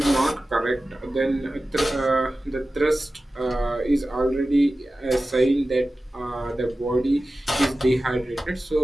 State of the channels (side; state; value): both; normal; correlation 0.95